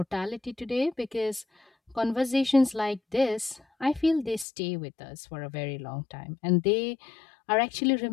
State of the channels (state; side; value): drops out; right; at 4.5 s